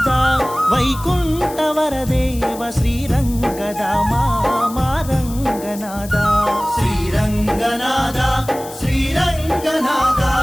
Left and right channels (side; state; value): left; noise; hiss, 15 dB below the sound